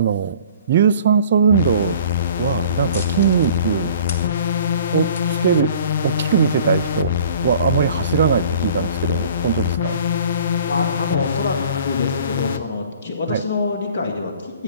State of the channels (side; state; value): both; inverted; correlation -0.49